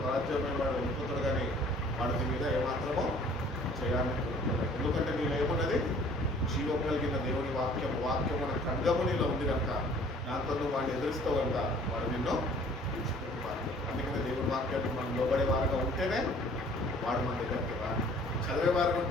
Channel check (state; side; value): normal; both; correlation 0.54